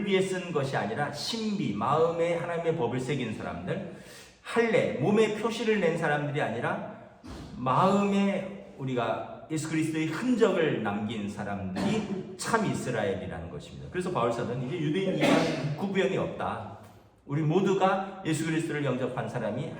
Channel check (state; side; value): identical; both; correlation 1.00